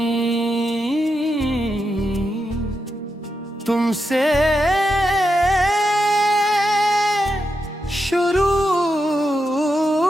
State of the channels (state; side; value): normal; both; correlation 0.86